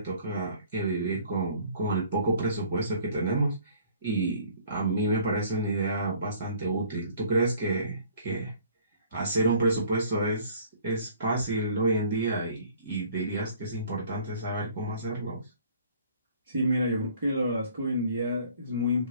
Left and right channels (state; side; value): inverted; both; correlation -0.54